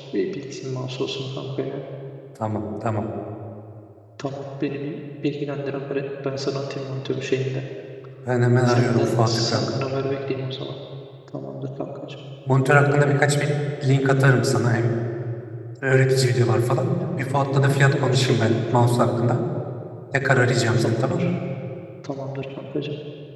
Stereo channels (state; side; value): identical; both; correlation 1.00